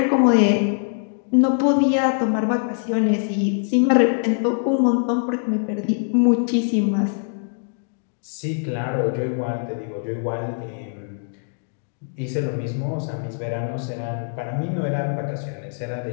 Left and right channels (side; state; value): right; silent; digital silence